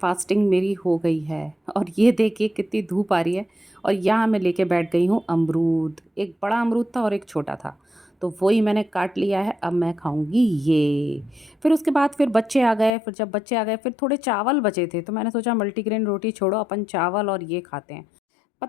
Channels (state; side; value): drops out; right; at 13.0 s